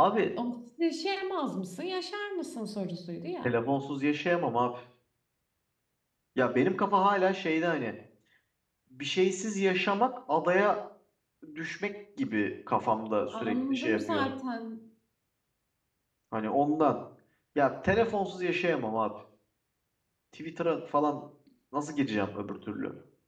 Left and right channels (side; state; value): both; identical; correlation 1.00